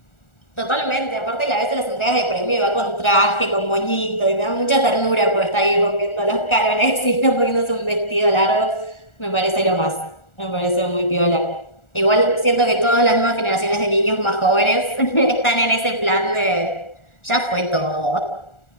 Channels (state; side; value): late; right; 1.4 ms